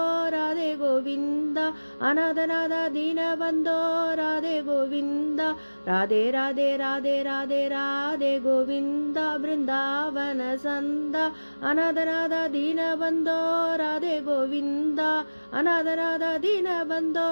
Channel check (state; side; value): inverted; both; correlation -1.00